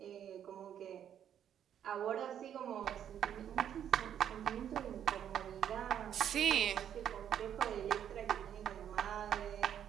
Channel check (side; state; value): left; quieter; 9.6 dB